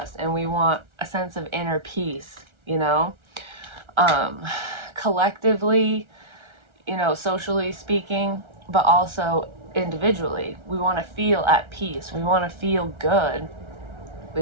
And we want a sense of inner peace, you know? Um, collectively, socially speaking, but also individually. We want to feel at peace. We want to feel good.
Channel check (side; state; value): left; late; 1.4 ms